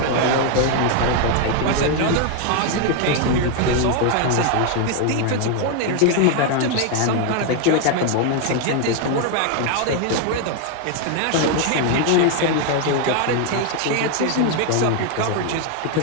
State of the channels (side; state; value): both; different; correlation 0.01